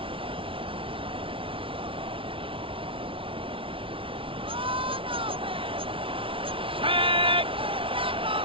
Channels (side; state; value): left; late; 0.25 ms